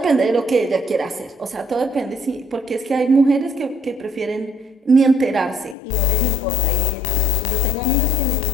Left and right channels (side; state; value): right; drops out; at 5.8 s